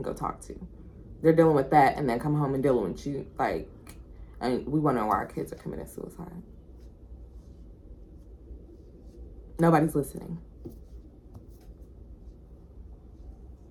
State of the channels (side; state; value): both; identical; correlation 1.00